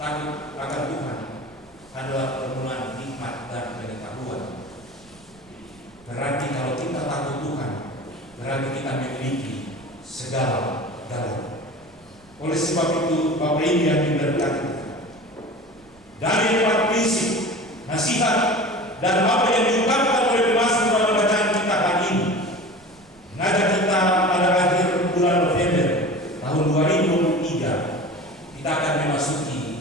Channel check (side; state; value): right; noise; rumble, 30 dB below the sound